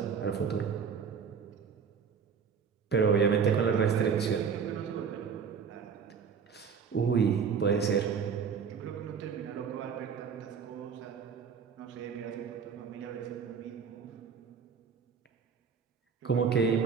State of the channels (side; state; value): left; quieter; 6.4 dB